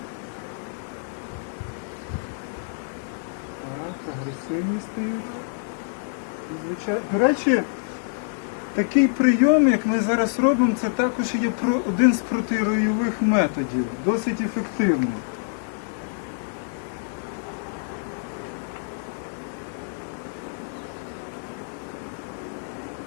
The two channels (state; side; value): silent; right; 61 dB below the other